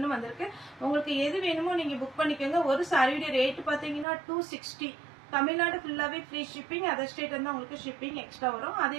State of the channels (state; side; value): drops out; left; at 4.0 s